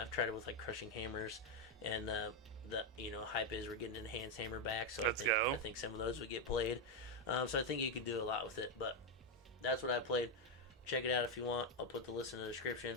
I've tried it with like Crushing Hammers, and the hype is we're getting Enhanced Hammer back, so I think some of those would get played. So I think you could do a lot with it. But that's what I played. Check it out if you want. I'll put the list in the description.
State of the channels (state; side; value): normal; both; correlation 0.03